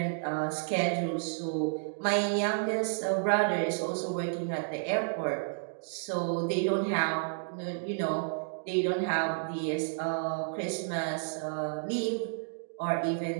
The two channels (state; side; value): silent; left; digital silence